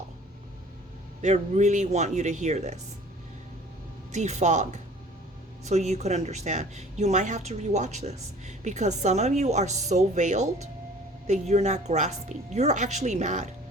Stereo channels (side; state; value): both; normal; correlation 0.49